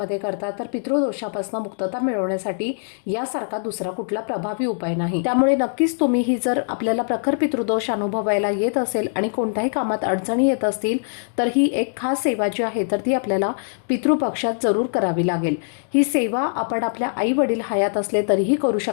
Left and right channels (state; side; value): silent; right; digital silence